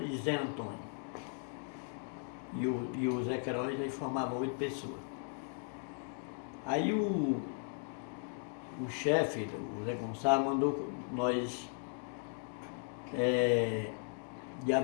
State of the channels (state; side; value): silent; right; 53 dB below the other